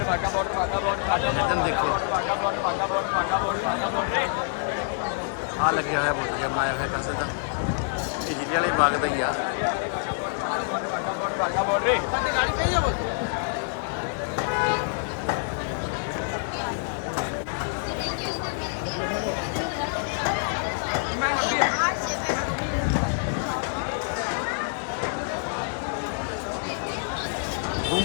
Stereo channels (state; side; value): silent; right; digital silence